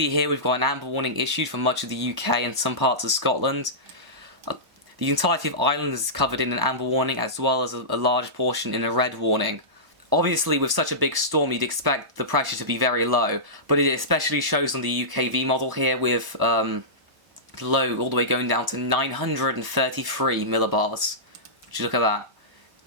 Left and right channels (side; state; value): left; late; 1.0 ms